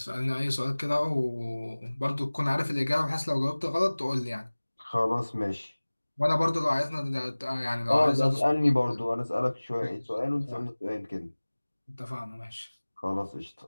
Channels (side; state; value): both; inverted; correlation -1.00